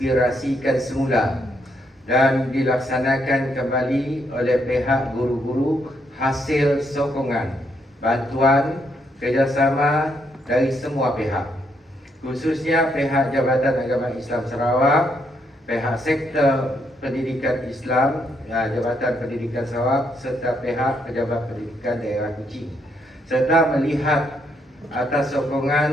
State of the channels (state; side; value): normal; both; correlation 0.75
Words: semula dan dilaksanakan kembali oleh pihak guru-guru hasil sokongan, bantuan, kerjasama dari semua pihak, khususnya pihak Jabatan Agama Islam Sarawak, pihak Sektor Pendidikan Islam, Jabatan Pendidikan Sarawak serta pihak Pejabat Pendidikan Daerah Kuching, serta melihat atas